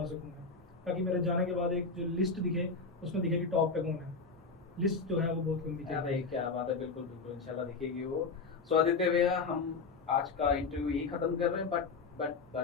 सकूँ मैं, ताकि मेरे जाने के बाद एक जो लिस्ट दिखे, उसमें दिखे कि टॉप पे कौन है। लिस्ट जो है वो बहुत लंबी क्या चल भाई क्या बात है, बिल्कुल बिल्कुल इंशाल्लाह दिखेगी वो। सो आदित्य भैया हम आज का इंटरव्यू यही खत्म कर रहे हैं, बट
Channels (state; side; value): quieter; right; 4.4 dB